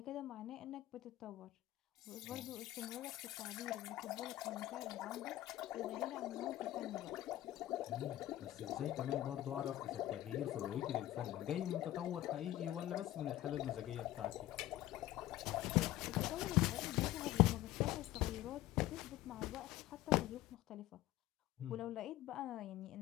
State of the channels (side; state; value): right; quieter; 14.9 dB